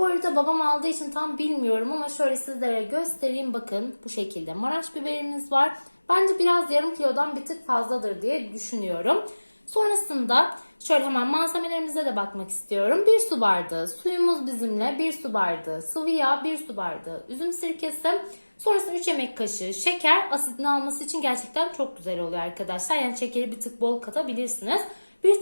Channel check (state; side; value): inverted; both; correlation -1.00